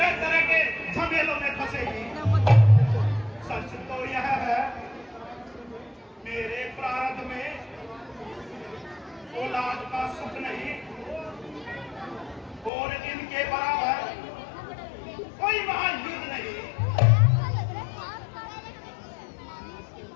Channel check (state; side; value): drops out; right; at 12.7 s